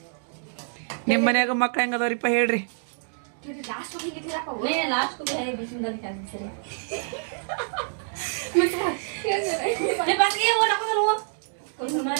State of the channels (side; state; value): left; silent; digital silence